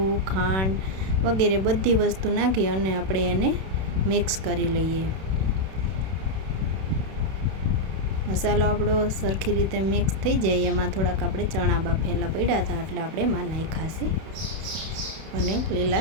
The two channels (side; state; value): left; late; 31 ms